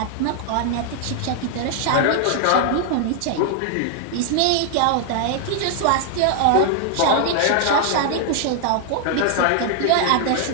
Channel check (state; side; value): different; both; correlation 0.00